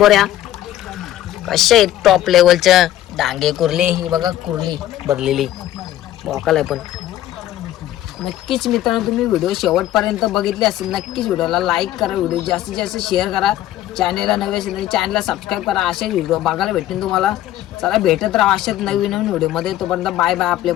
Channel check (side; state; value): right; quieter; 13.3 dB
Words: कशा आहेत टॉप लेवलच्या डांगे कुर्ली ही बघा कुर्ली भरलेली मोकाल आहे पण नक्कीच मित्रांनो तुम्ही व्हिडिओ शेवटपर्यंत बघितले असेल नक्कीच व्हिडिओला लाईक करा व्हिडिओ जास्तीत जास्त शेअर करा चॅनलला नवे असेल तर चॅनलला सबस्क्राईब करा असे व्हिडिओ बघायला भेटेल तुम्हाला चला भेटत राहा अशाच नवीन व्हिडिओमध्ये तोपर्यंत बाय बाय आपल्या